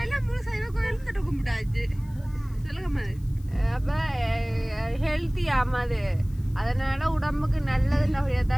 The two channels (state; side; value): noise; left; hiss, 28 dB below the sound